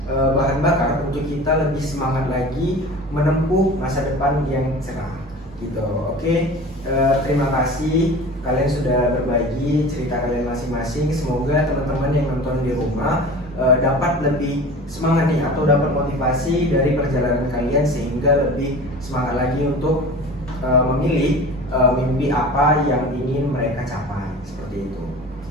bahan bakar untuk kita lebih semangat lagi menempuh masa depan yang cerah gitu. Oke, terima kasih kalian sudah berbagi cerita kalian masing-masing. Semoga teman-teman yang nonton di rumah dapat lebih semangat nih, atau dapat motivasi dari perjalanan kalian sehingga lebih semangat lagi untuk memilih mimpi apa yang ingin mereka capai, seperti itu.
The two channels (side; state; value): both; normal; correlation 0.38